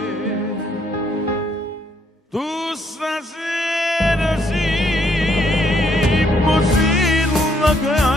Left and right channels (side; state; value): both; normal; correlation 0.70